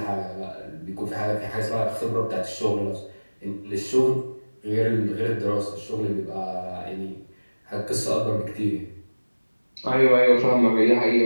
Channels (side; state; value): both; inverted; correlation -1.00